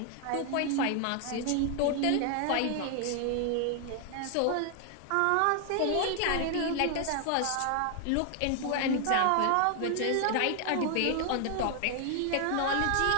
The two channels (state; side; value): different; both; correlation 0.00